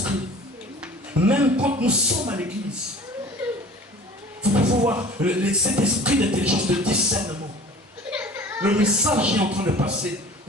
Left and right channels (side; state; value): both; normal; correlation 0.45